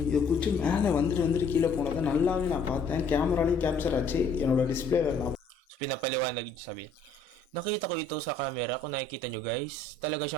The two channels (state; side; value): quieter; right; 3.6 dB